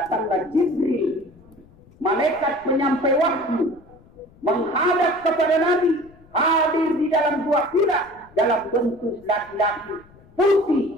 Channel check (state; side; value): noise; left; rumble, 26 dB below the sound